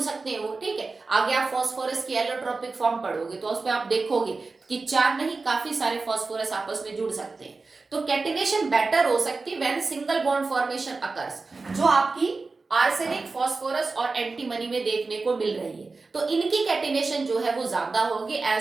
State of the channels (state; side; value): quieter; left; 3.9 dB